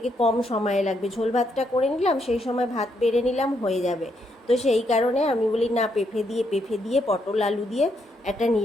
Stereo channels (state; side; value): normal; both; correlation 0.77